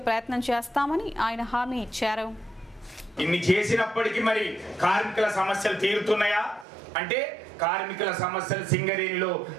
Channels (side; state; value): left; drops out; at 6.7 s